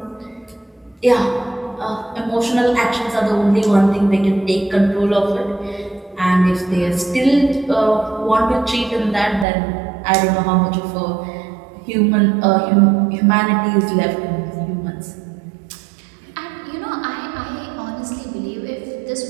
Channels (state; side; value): drops out; left; at 9.5 s